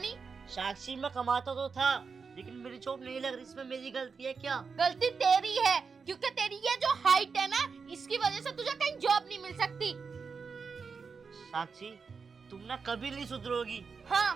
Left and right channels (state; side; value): quieter; left; 5.3 dB